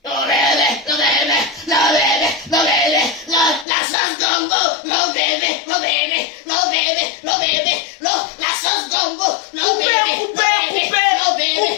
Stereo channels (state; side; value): drops out; right; at 3.7 s